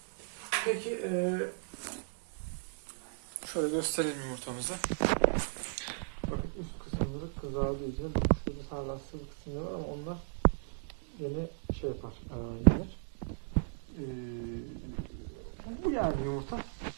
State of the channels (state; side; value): silent; left; 54 dB below the other